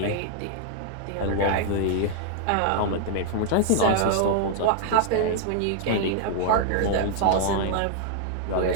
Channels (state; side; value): different; both; correlation -0.01